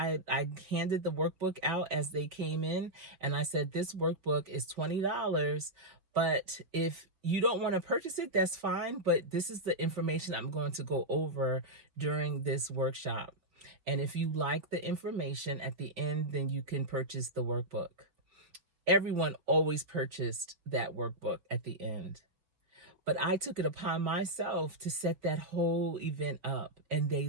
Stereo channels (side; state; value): left; late; 5.2 ms